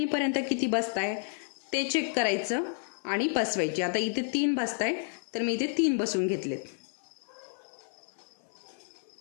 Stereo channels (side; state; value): right; silent; 57 dB below the other